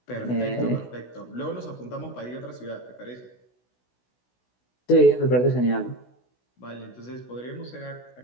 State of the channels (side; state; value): right; late; 16 ms